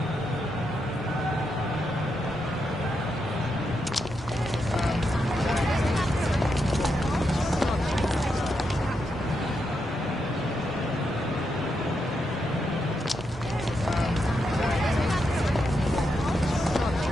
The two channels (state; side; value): normal; both; correlation 0.83